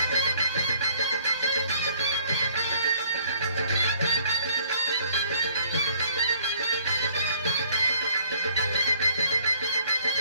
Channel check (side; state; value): both; inverted; correlation -0.61